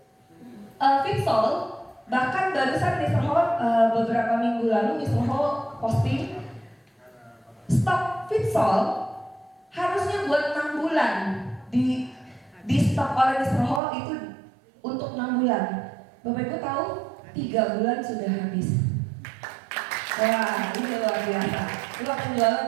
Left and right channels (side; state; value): left; drops out; at 13.8 s